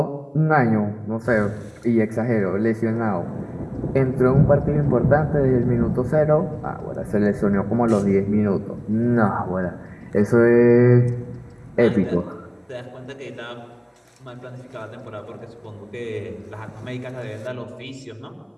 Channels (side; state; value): both; identical; correlation 1.00